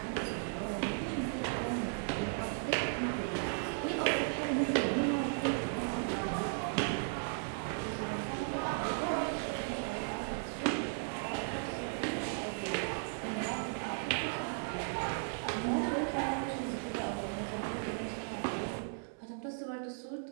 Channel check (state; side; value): silent; left; digital silence